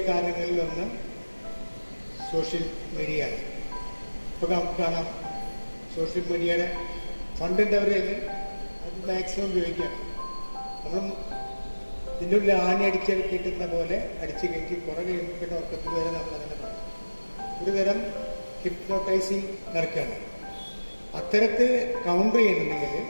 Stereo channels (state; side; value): inverted; both; correlation -1.00